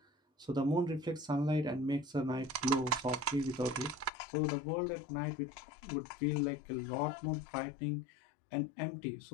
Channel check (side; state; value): right; drops out; at 4.1 s